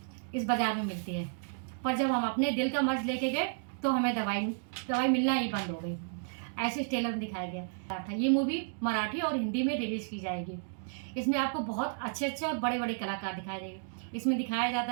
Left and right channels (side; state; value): left; silent; digital silence